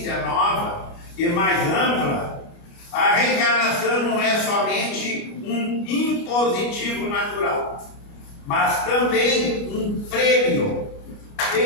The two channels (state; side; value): late; right; 29 ms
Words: nova e mais ampla, a reencarnação não é somente um impositivo natural, mas também um prêmio